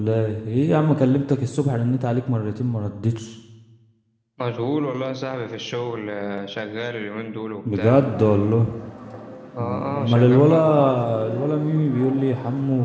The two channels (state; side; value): identical; both; correlation 1.00